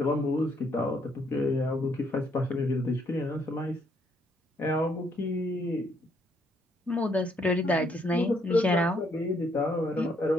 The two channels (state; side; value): normal; both; correlation 0.71